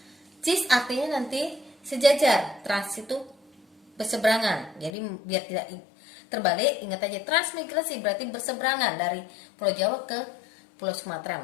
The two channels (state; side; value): drops out; right; at 4.9 s